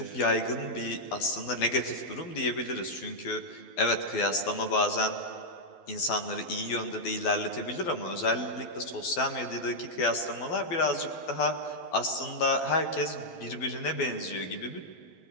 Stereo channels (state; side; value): late; right; 12 ms